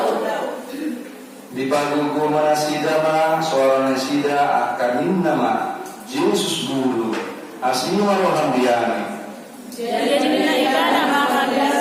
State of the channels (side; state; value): both; identical; correlation 1.00